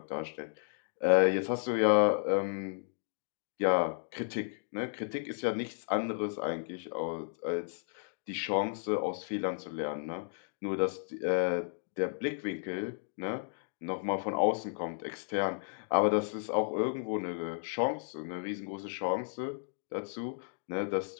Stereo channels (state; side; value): silent; right; digital silence